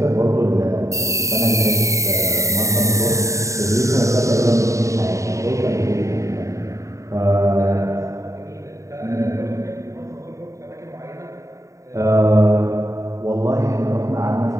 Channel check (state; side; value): late; left; 0.15 ms